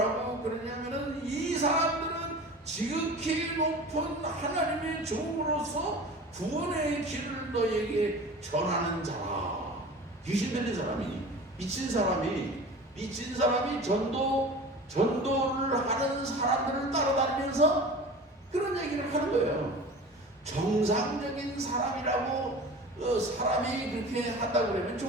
그러냐면은, 이 사람들은 지극히 높은 하나님의 종으로서 구원의 길을 너에게 전하는 자라. 귀신 들린 사람이, 미친 사람이 전도를 하는 사람들을 따라다니면서 그런 얘기를 하는 거예요. 정상적인 사람이라고 사람이 그렇게 한다고 그러면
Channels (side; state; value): both; normal; correlation 0.38